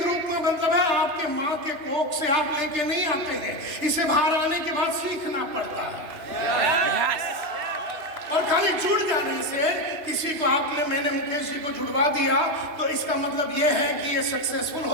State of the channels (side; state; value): left; late; 3.2 ms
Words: रूप में मतलब है आपके माँ के कोख से आप लेके नहीं आते हैं, इसे बाहर आने के बाद सीखना पड़ता है। और खाली जुड़ जाने से किसी को मैंने मुकेश जी को जुड़वा दिया तो इसका मतलब ये है कि ये सक्सेसफुल